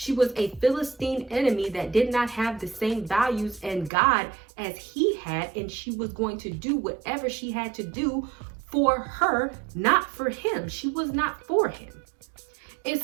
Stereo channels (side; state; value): left; drops out; at 3.9 s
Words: was a Philistine enemy that did not have the same values and God as he had, and she was going to do whatever she had to do for her, not for him. She was not for him. And